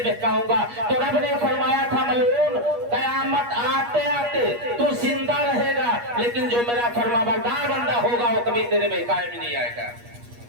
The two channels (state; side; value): late; left; 8.4 ms